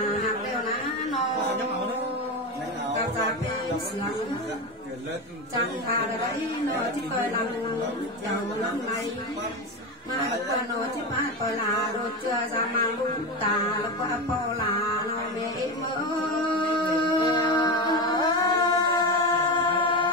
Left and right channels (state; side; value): normal; both; correlation 0.17